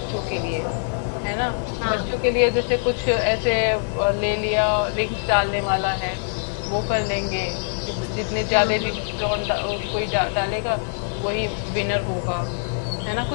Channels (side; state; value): right; silent; digital silence